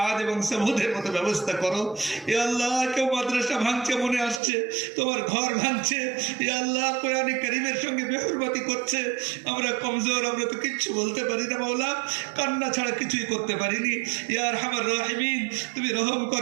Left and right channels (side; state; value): left; drops out; at 4.4 s